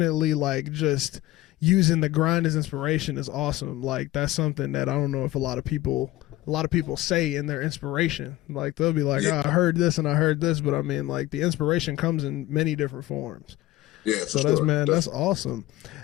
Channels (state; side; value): quieter; right; 16.5 dB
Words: like just using the grind as inspiration is awesome. Like that's something that I don't know if a lot of people say in their inspiration. Like they'll be like, oh, I heard this and I heard this, but I mean like the inspiration comes in many different forms. Yeah. So that's awesome.